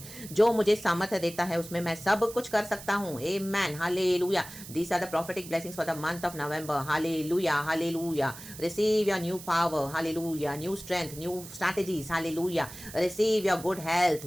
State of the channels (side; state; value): right; noise; hiss, 14 dB below the sound